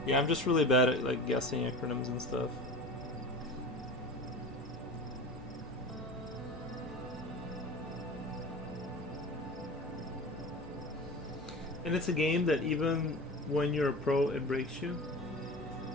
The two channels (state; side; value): normal; both; correlation 0.34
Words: Yeah, I'm just really bad at like guessing acronyms and stuff. And it's a game that even when you're a pro, it breaks you.